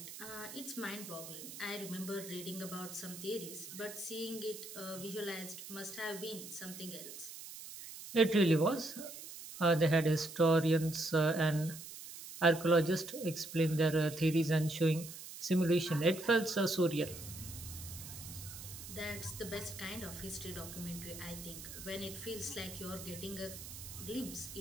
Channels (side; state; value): right; noise; hiss, 12 dB below the sound